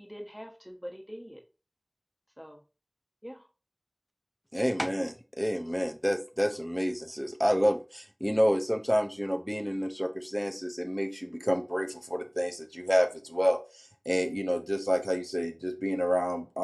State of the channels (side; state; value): both; identical; correlation 1.00